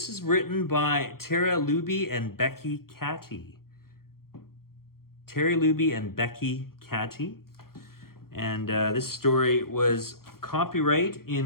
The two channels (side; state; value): right; late; 0.93 ms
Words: is written by Luebbe and Becky Cattie. Luebbe and Becky Cattie. And this story was copyright